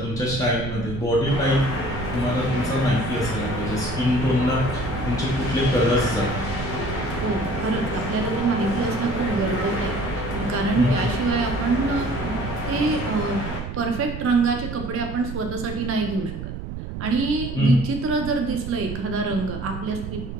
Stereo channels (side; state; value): right; noise; rumble, 7 dB below the sound